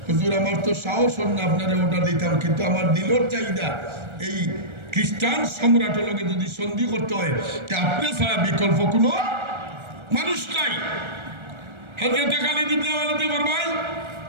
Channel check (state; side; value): late; left; 1.4 ms